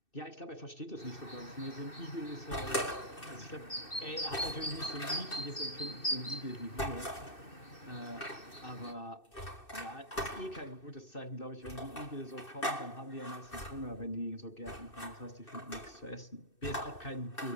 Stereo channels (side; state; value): right; late; 2.6 ms